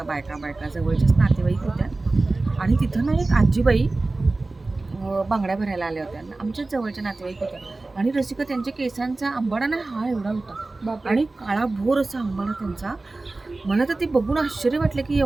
बायका बायका जवळच्याच नातेवाईक होत्या. आणि तिथं ना एक आजीबाई बांगड्या भरायला आल्या होत्या. आमच्याच जवळच्या नातेवाईक होत्या. आणि रसिका, त्यांच्या केसांचा आंबाडा ना हा एवढा होता बापरे. आणि काळा भोर असा आंबाडा त्यांचा. मला तर ते बघून आश्चर्य वाटलं की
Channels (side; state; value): left; quieter; 3.2 dB